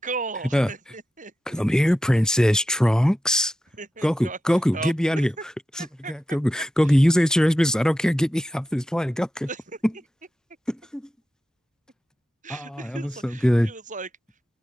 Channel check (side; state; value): both; normal; correlation 0.91